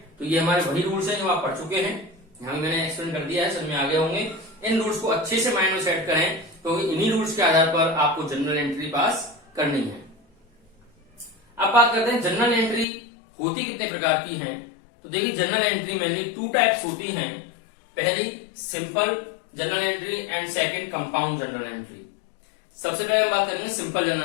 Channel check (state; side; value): drops out; right; at 12.9 s